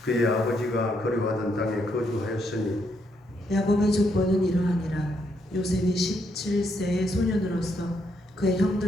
그의 아버지가 거류하던 땅에 거주하였으니 야곱의 족보는 이러하니라. 요셉이 17세의 소년으로서 그의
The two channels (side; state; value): both; normal; correlation 0.76